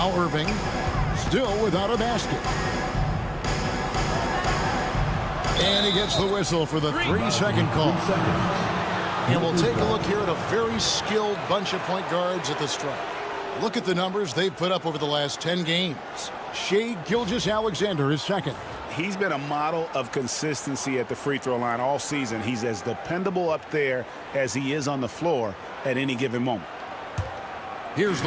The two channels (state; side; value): identical; both; correlation 1.00